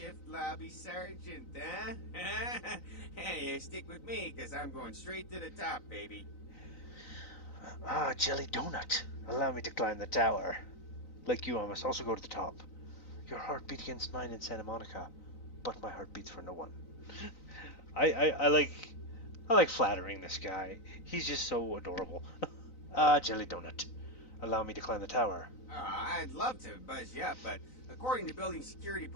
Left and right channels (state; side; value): late; right; 3.9 ms